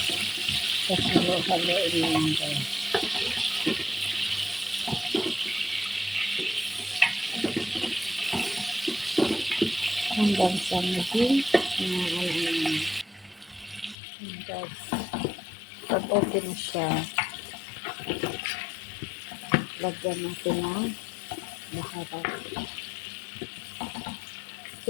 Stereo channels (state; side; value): drops out; right; at 14.0 s